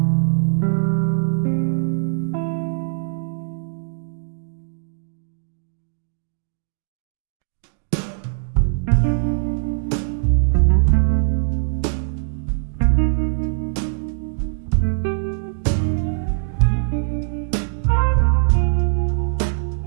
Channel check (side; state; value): left; silent; digital silence